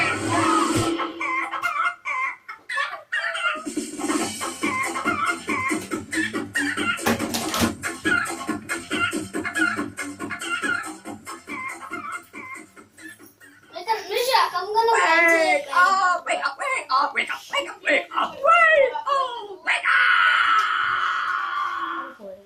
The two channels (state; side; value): identical; both; correlation 1.00